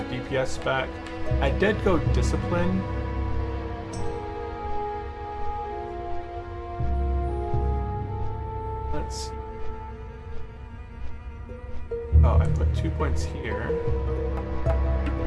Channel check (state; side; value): identical; both; correlation 1.00